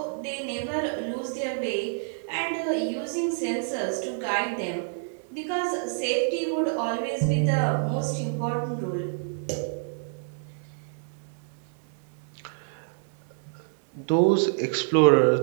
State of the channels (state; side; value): silent; left; 60 dB below the other